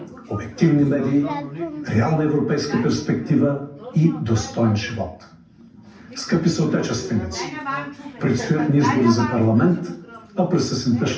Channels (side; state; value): both; identical; correlation 1.00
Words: обективни медии, реална европейска перспектива и достоен живот. Скъпи съотечественици, предстоят ни избори за парламент, а през есента